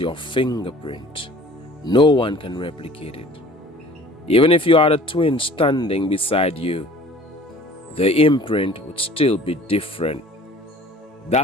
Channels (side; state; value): both; normal; correlation 0.49